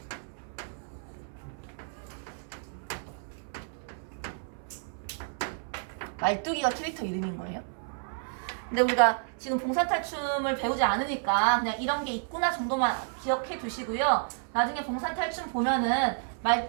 말뚝이가 캐릭터 이름인 거예요. 근데 우리가 지금 봉산탈춤을 배우지 않으니까 그냥 이런 게 있구나 정도만 기억해 두시고요. 나중에 봉산탈춤 보면은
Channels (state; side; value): silent; left; 57 dB below the other